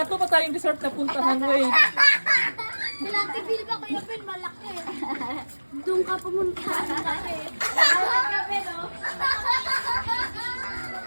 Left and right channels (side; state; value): both; inverted; correlation -1.00